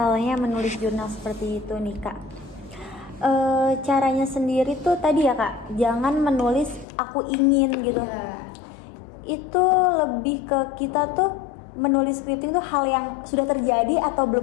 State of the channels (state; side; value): drops out; right; at 6.9 s